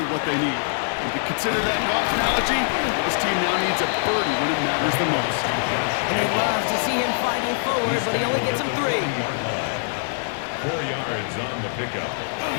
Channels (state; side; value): silent; right; digital silence